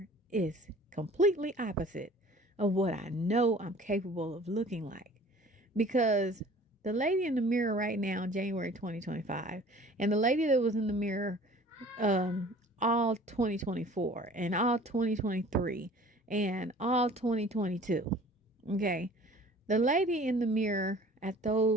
is completely opposite of what I know I'm capable of looking like. Because the lady in the mirror right now, January 2025, and the lady that was in the mirror all 2024 and all 2023 and all 2022. Okay. The lady in the mirror at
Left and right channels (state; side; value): normal; both; correlation 0.48